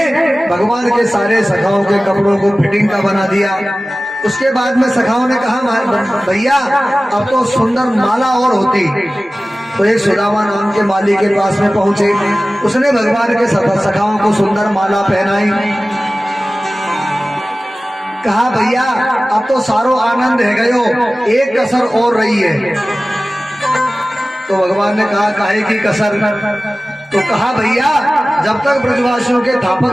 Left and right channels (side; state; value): both; normal; correlation 0.97